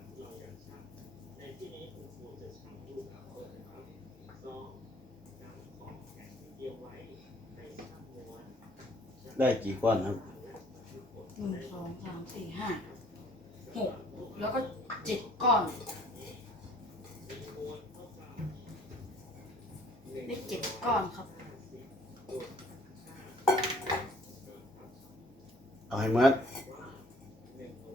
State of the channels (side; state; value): both; normal; correlation 0.56